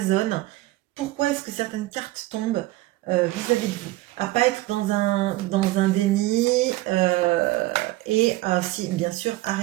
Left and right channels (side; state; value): left; quieter; 18.0 dB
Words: pourquoi est-ce que certaines cartes tombent vis-à-vis de vous. À ne pas être dans un déni et si, bien sûr, à